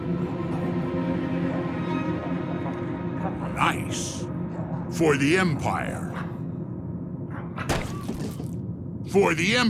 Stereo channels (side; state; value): both; identical; correlation 1.00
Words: Nice. For the Empire. For the